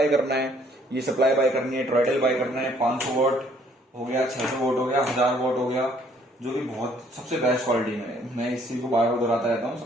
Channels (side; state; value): both; normal; correlation 0.63